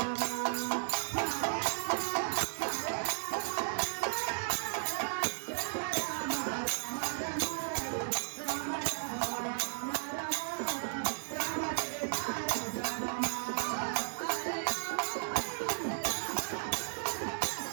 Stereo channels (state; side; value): silent; left; digital silence